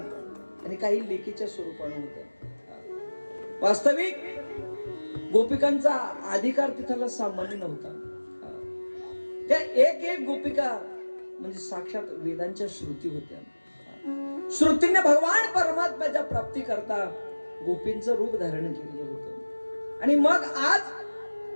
आणि काही लेकीच्या स्वरूपाने होत्या. वास्तविक गोपिकांचा अधिकार तिथला सामान्य नव्हता. त्या एक एक गोपिका म्हणजे साक्षात वेदांच्या श्रुती होत्या. श्रुतीने भगवान परमात्म्याच्या प्राप्ती करता गोपींचं रूप धारण केलेलं होतं. आणि मग आज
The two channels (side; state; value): both; inverted; correlation -1.00